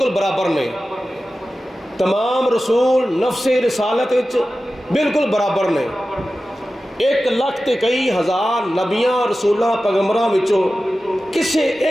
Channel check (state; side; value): normal; both; correlation 0.94